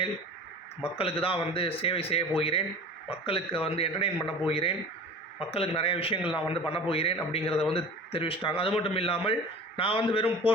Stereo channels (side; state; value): both; normal; correlation 0.38